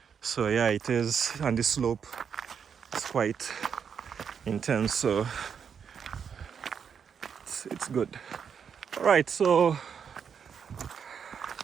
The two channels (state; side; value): quieter; left; 7.1 dB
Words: So yeah, it is, and the slope is quite intense. So it's good. All right, so